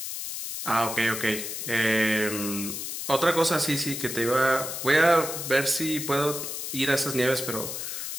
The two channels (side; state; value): left; noise; hiss, 5 dB below the sound